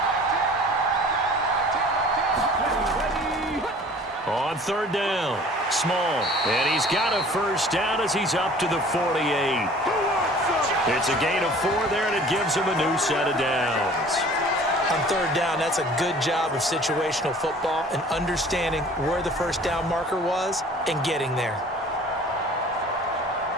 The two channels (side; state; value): both; normal; correlation 0.48